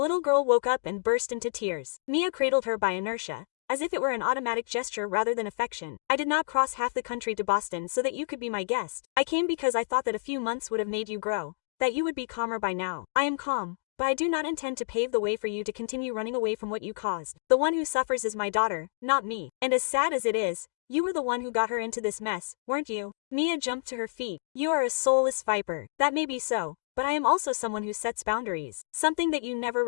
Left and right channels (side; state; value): right; silent; digital silence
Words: girl woke up and burst into tears. Mia cradled her by inertia, as if it were an automatic gesture rather than affection. I did not cross half the country to Boston so that you could be my guest. I came because I thought that a few months would have made you grow, that you would be calmer by now. I am calm, but I do not intend to pave the way for you to continue running away from what you caused. The one who suffers is my daughter, not me. And as sad as it is, you were the one who got her into this mess, weren't you? Mia jumped to her feet. You are a soulless viper. That may be so, but I am also someone who sets boundaries. Something that you never